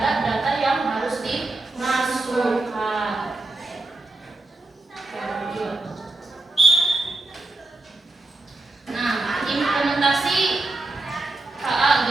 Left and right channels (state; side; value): quieter; left; 3.0 dB